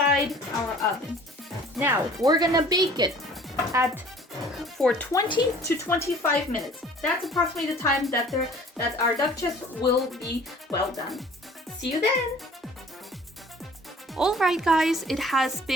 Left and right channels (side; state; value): both; normal; correlation 0.50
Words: our oven. Now, we're gonna bake it for 20 to 25 minutes. That's approximately the time that our duck chests will be well done. See you then. Alright guys, it has